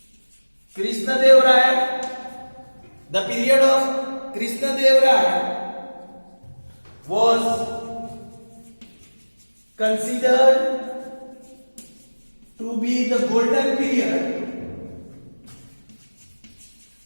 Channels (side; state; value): both; inverted; correlation -1.00